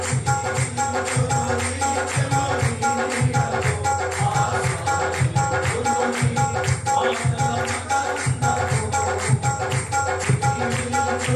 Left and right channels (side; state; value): both; identical; correlation 1.00